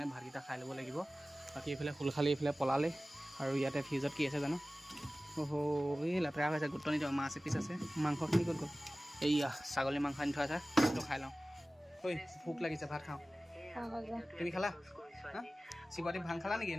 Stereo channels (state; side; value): normal; both; correlation 0.97